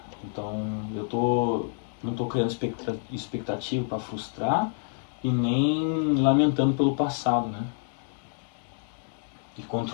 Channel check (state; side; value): silent; right; 59 dB below the other